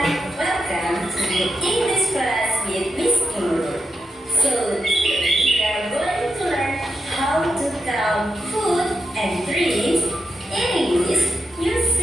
welcome to the English class with Miss Nur. So today we are going to learn how to count food and drinks in English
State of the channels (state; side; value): normal; both; correlation 0.84